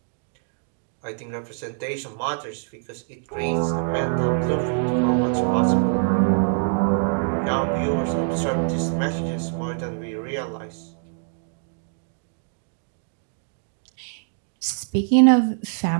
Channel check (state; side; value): silent; left; digital silence